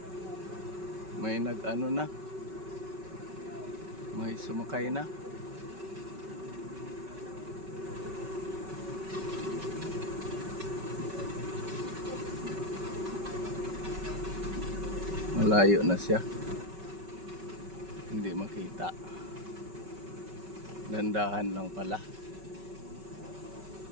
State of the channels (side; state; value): left; late; 5.3 ms